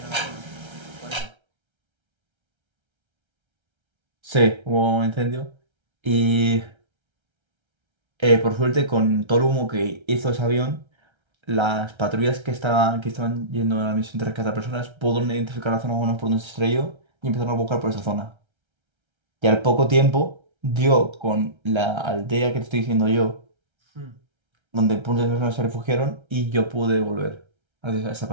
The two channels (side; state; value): left; late; 1.3 ms